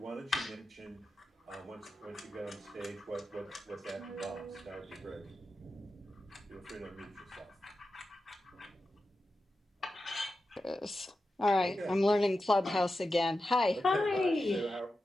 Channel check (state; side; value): normal; both; correlation 0.91